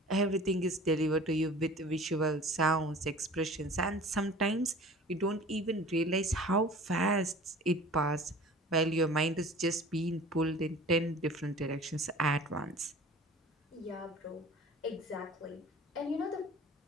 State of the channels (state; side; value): normal; both; correlation 0.43